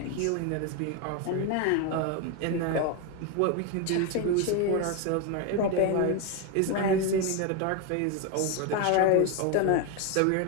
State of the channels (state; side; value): different; both; correlation 0.02